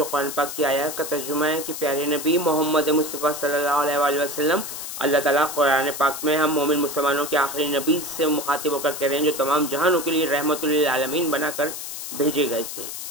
कुरान पाक की आयत का तर्जुमा है कि प्यारे नबी मोहम्मद मुस्तफ़ा सल्लल्लाहु अलैहि वसल्लम, अल्लाह ताला कुरान पाक में हम मोमिन मुसलमानों के आखिरी नबी से मुखातिब होकर कह रहे हैं जो तमाम जहानों के लिए रहमतुल लिल आलमीन बनाकर भेजे गए थे।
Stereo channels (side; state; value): left; noise; hiss, 7 dB below the sound